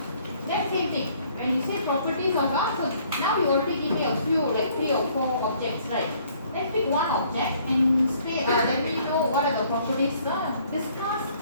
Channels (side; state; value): both; inverted; correlation -0.61